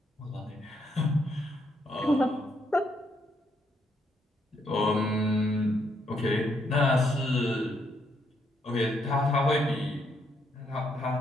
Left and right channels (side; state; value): both; normal; correlation 0.75